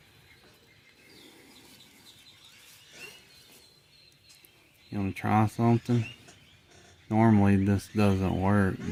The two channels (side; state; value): both; identical; correlation 1.00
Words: You want to try something? Normally this doesn't work,